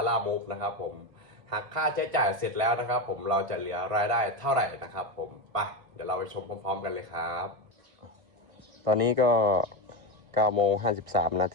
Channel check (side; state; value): left; late; 1.5 ms